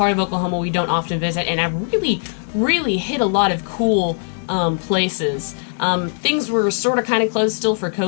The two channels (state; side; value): silent; right; 60 dB below the other